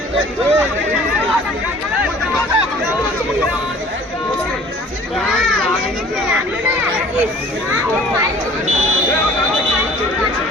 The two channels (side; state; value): both; normal; correlation 0.50